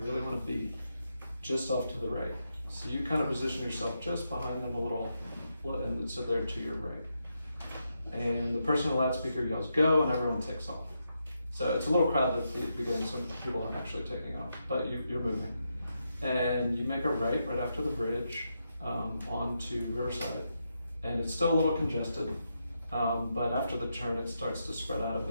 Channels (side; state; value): both; inverted; correlation -0.83